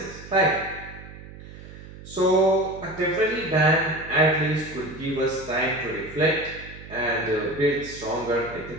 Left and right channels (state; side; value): noise; right; hum, 16 dB below the sound